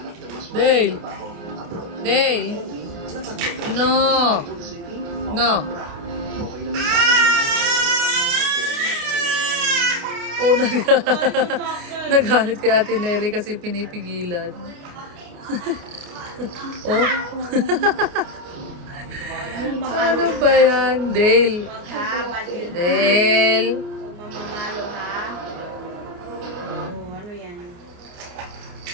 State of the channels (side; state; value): left; late; 29 ms